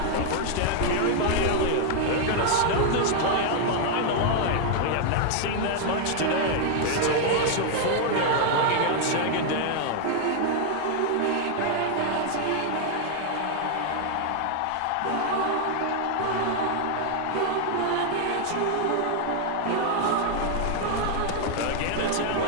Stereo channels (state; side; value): different; both; correlation 0.00